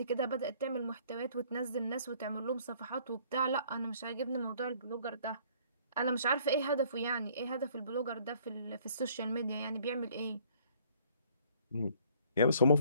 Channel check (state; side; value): inverted; both; correlation -0.59